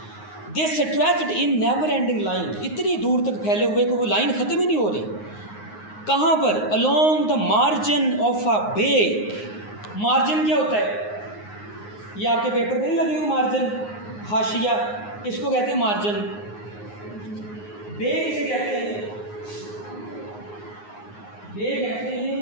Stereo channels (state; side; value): late; right; 9.6 ms